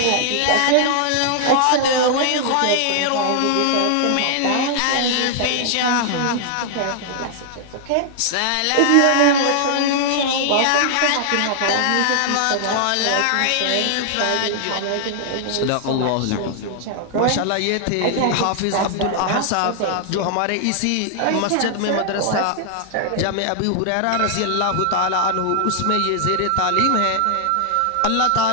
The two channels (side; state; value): both; different; correlation 0.00